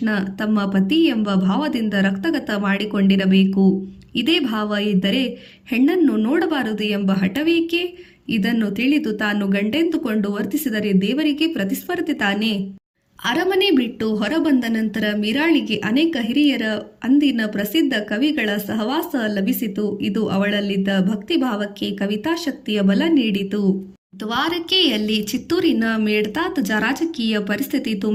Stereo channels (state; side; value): identical; both; correlation 1.00